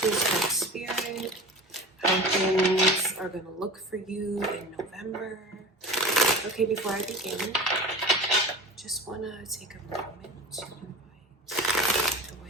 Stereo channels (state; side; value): normal; both; correlation 0.33